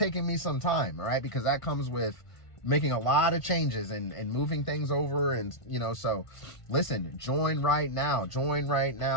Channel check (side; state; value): right; late; 1.5 ms